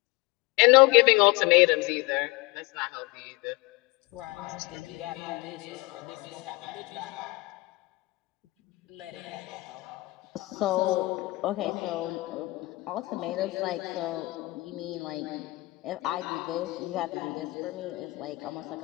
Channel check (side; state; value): right; quieter; 22.4 dB